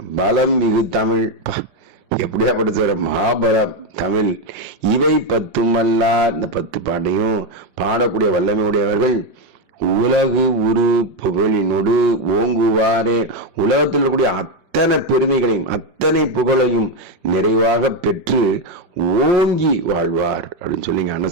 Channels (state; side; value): late; left; 5.5 ms